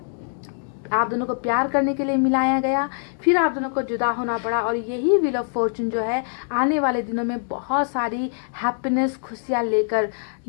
को प्यार करने के लिए मिलाया गया, फिर आप दोनों को जुदा होना पड़ा। और यही व्हील ऑफ फॉर्चून जो है आने वाले दिनों में बहुत सारी हैप्पीनेस, खुशियाँ लेकर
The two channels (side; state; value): right; silent; digital silence